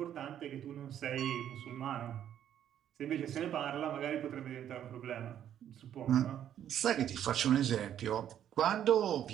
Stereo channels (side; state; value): left; quieter; 10.3 dB